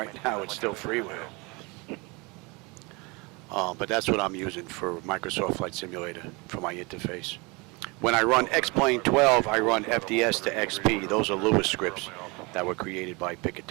now it's still freeware. But that's what I'm using for Microsoft Flight Simulator for my interface. When I run X-Plane 12, I run FDS to XP. Those are Lewis scripts that were created by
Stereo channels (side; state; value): left; quieter; 27.4 dB